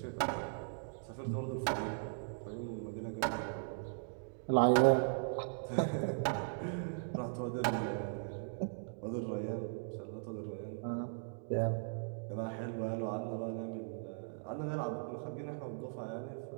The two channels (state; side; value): silent; left; digital silence